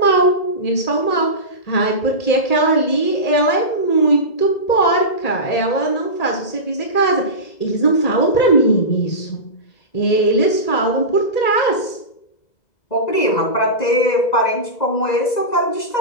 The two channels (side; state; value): right; late; 2.0 ms